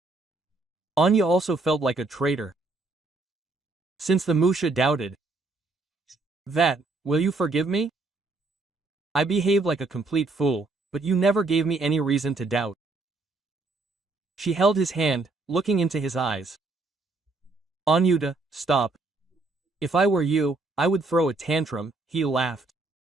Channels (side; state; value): left; quieter; 3.4 dB